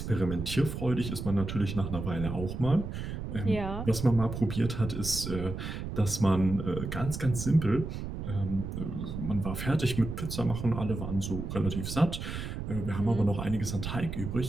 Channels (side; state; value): right; noise; rumble, 6 dB below the sound